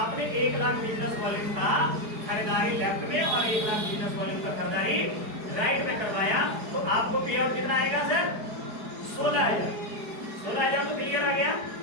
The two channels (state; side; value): late; left; 4.8 ms